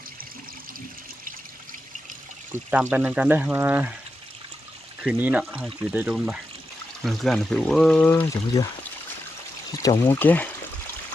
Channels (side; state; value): both; normal; correlation 0.88